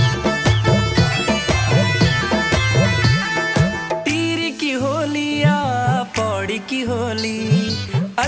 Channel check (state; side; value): identical; both; correlation 1.00